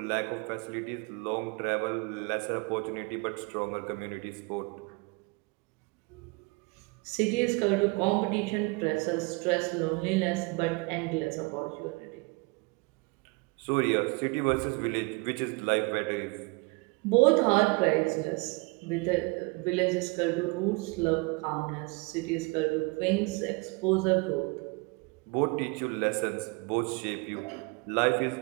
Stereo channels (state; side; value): quieter; left; 28.4 dB